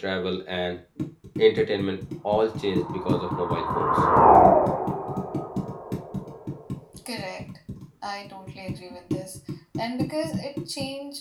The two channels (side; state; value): both; identical; correlation 1.00